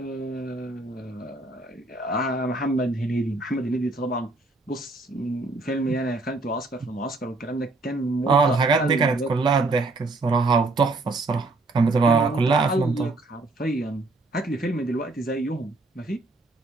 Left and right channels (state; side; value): quieter; left; 3.2 dB